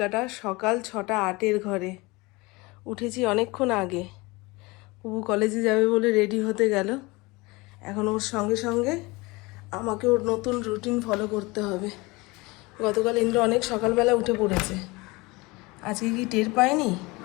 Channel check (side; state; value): right; quieter; 23.9 dB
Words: সকাল 6:08 ঘরে। উঠেছি অনেকক্ষণ আগে। পুবু কলেজে যাবে বলে রেডি হতে গেল। এখন ওর সঙ্গে সঙ্গে আমাকে ওর নতুন রুটিন ফলো করতে হবে। গতকাল ইন্দ্র অনেক সকালবেলা উঠে পড়েছে। আজকে কি টের পায়নি